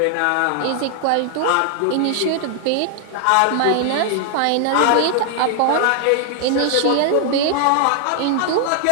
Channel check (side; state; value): both; different; correlation 0.00